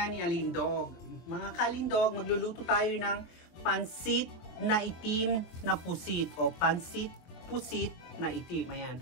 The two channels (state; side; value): late; right; 23 ms